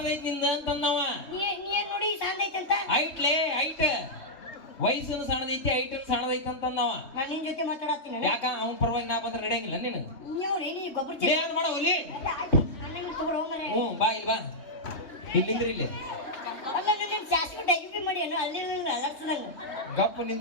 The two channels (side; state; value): right; late; 3.2 ms